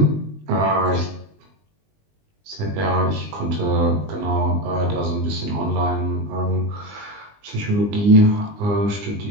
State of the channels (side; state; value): left; late; 20 ms